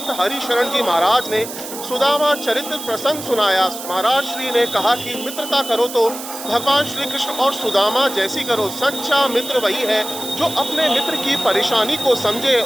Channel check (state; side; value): noise; right; hiss, 10 dB below the sound